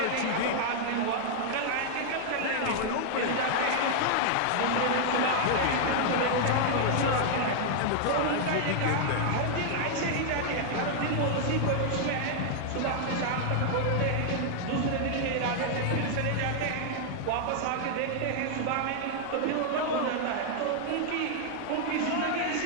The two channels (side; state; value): both; different; correlation 0.00